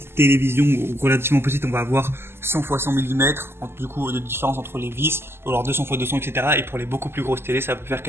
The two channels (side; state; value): left; late; 0.12 ms